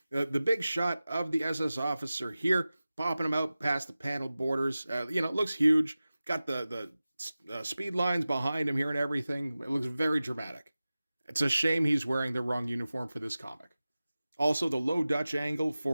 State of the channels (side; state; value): both; inverted; correlation -0.96